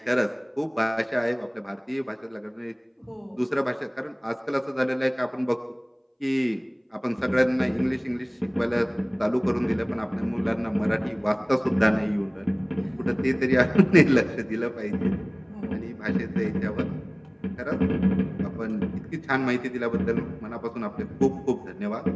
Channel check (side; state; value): both; identical; correlation 1.00